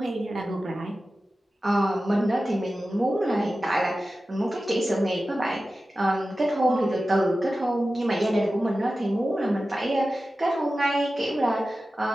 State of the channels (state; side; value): normal; both; correlation 0.94